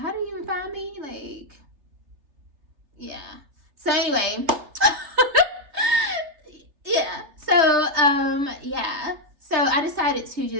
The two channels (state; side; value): late; left; 3.3 ms